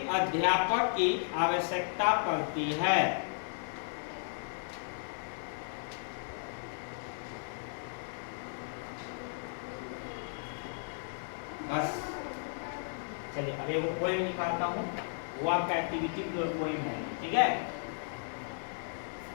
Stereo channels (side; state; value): right; silent; digital silence